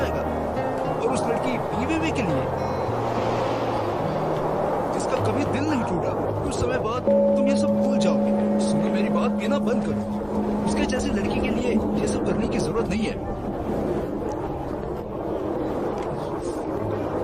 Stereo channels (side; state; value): both; identical; correlation 1.00